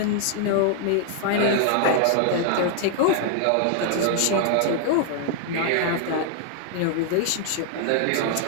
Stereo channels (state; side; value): different; both; correlation 0.00